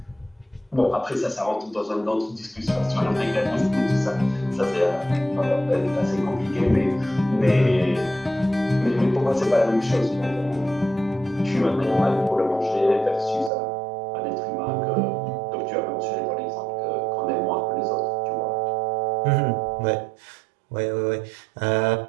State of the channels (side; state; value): left; drops out; at 13.5 s